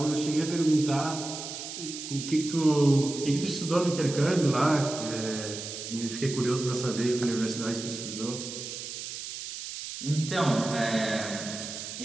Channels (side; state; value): right; noise; hiss, 8 dB below the sound